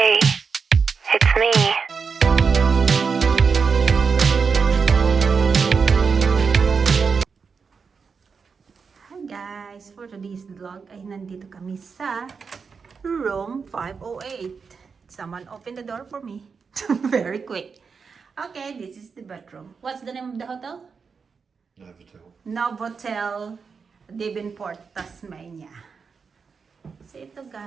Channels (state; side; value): quieter; left; 5.5 dB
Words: it's me. Hi guys, for today's vlog ay nandito kami sa room 508. Someone open the door for me. Very quick. Okay, this is the bedroom. What's the name of the hotel? Novotel. Novotel Devonport, Tasmania. So ito